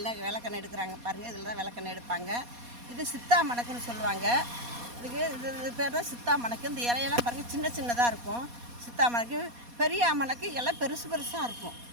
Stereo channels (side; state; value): left; late; 4.2 ms